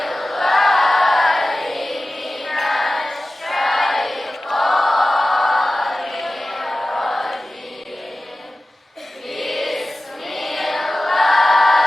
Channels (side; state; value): both; normal; correlation 0.96